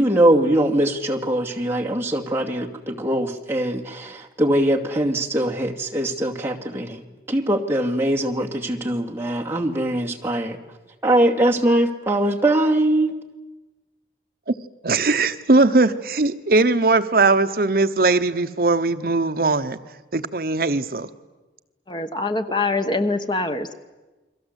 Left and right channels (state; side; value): normal; both; correlation 0.46